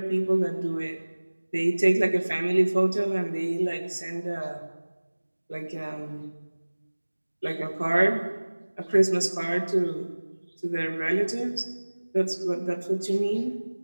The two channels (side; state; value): both; inverted; correlation -1.00